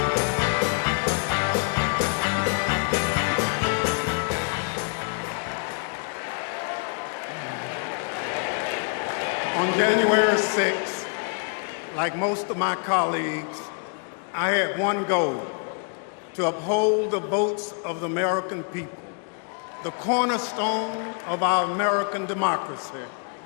On January 6th, like most of my colleagues, I had one goal: to uphold the votes of the American people, the cornerstone of our American democracy.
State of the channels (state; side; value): quieter; right; 39.3 dB